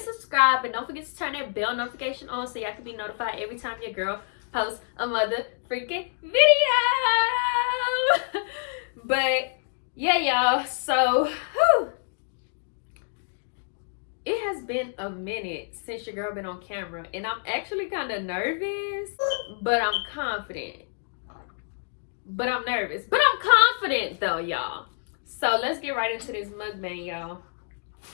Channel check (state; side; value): silent; right; digital silence